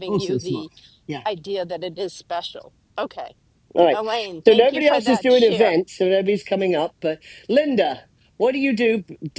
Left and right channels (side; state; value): both; identical; correlation 1.00